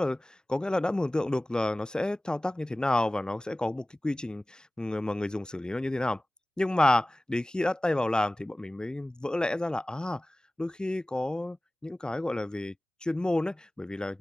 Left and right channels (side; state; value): both; normal; correlation 0.98